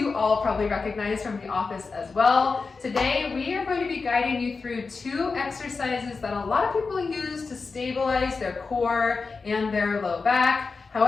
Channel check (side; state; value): right; quieter; 4.4 dB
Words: all probably recognize from the office as well. Today we are going to be guiding you through two exercises that a lot of people use to stabilize their core and their low back.